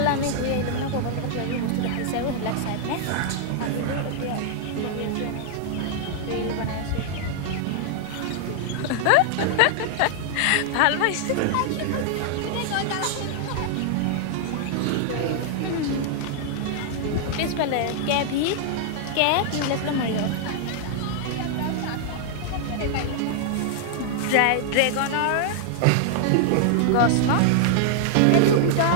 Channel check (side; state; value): both; different; correlation -0.01